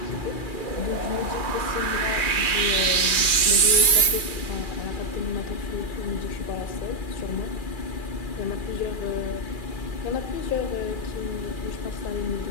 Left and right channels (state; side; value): late; right; 2.4 ms